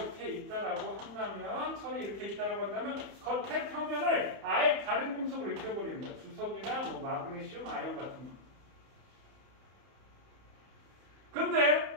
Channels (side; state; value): left; late; 31 ms